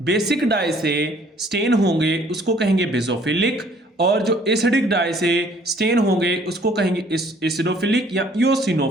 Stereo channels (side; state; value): both; normal; correlation 0.58